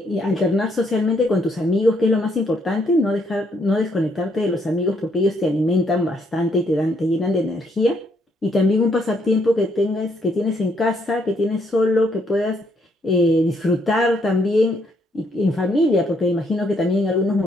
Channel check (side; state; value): both; normal; correlation 0.72